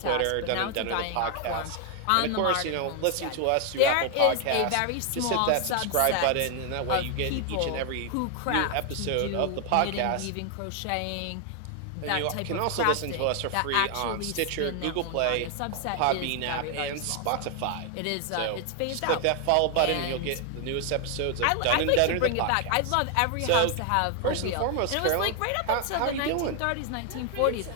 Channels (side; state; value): both; different; correlation 0.00